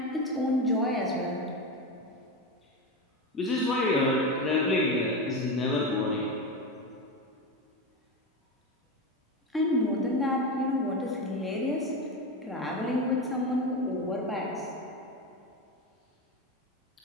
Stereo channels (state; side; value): normal; both; correlation 0.18